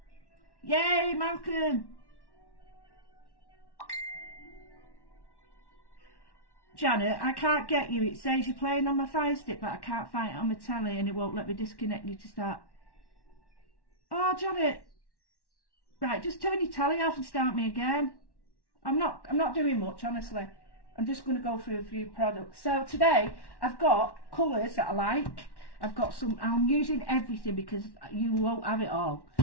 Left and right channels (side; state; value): right; late; 1.1 ms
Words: Yay, Malcolm. Janet, I can't get you. It says you're playing on my Fire Stick, but I can't find it on my telly and it won't let me disconnect you to start. Oh, Janet. Right, just turn your telly off and start me again. I'm not doing much, honestly. I'm just going to go through a few products. So today, I've got colours that I like. I've got some, I'm using everything because you won't have it all.